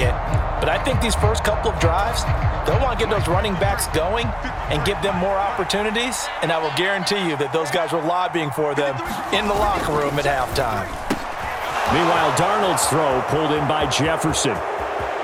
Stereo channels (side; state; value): both; identical; correlation 1.00